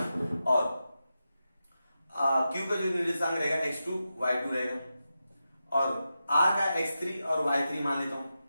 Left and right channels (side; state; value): both; inverted; correlation -0.90